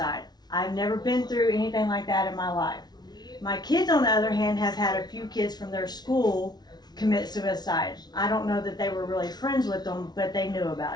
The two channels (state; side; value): late; right; 0.19 ms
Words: I've never been through anything like that in my life. My kids, on the other hand, have had a few kids from their school commit suicide. I don't know that they were really friends with them, but they knew